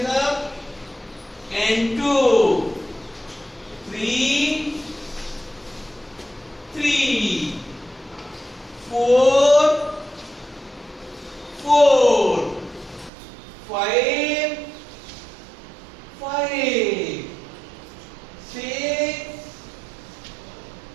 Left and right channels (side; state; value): left; drops out; at 13.1 s